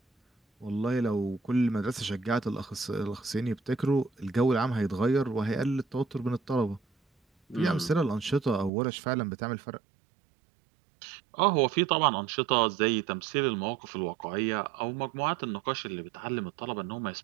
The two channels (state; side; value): drops out; left; at 8.7 s